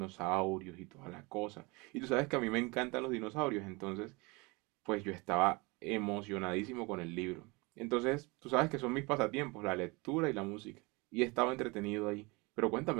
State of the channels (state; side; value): quieter; left; 26.4 dB